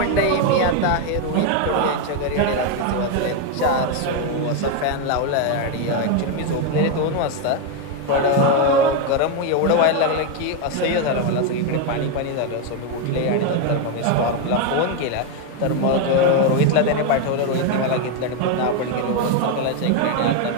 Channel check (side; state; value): both; different; correlation 0.02